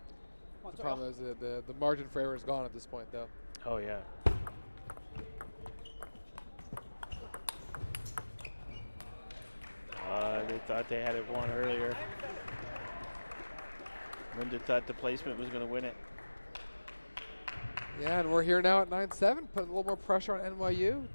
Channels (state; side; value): inverted; both; correlation -1.00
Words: The problem is the margin for error is gone at this point, though. Oh, yeah. They thought they had it won earlier. Linda thought the placement was going to win it. Yeah, and we're here now at 9-7, putting a little more pressure on NYU.